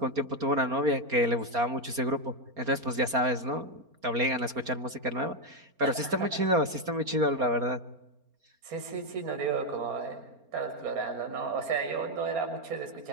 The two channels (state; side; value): late; left; 4.3 ms